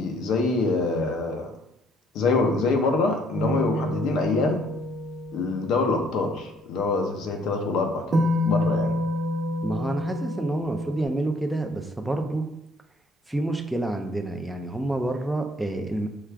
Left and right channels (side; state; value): both; normal; correlation 0.63